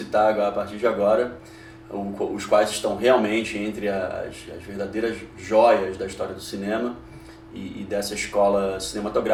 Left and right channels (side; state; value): both; identical; correlation 1.00